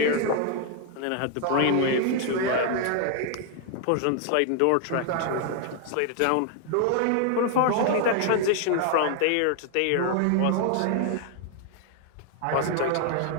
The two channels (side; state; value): both; different; correlation 0.00